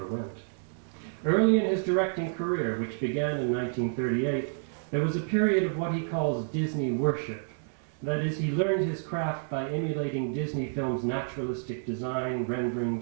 went. Early in his directing career, which began in 1938, there was a period of what he calls Disney worship. That is, he learned his craft by emulating Disney films' naturalistic design, rendering,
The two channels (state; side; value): silent; left; digital silence